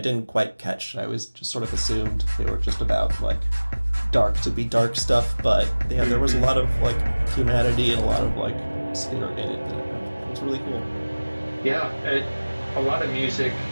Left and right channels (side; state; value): both; inverted; correlation -1.00